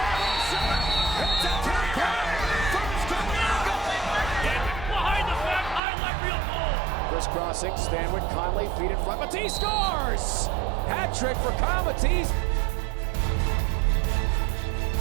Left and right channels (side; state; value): left; drops out; at 5.8 s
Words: two-point first behind the back, highlight real ball. crisscrossing, Stanwood, Conley, feet in front. Matisse scores! Hat trick for Kyle Matisse.